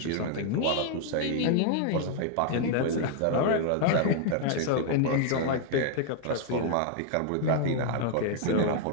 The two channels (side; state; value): both; different; correlation 0.00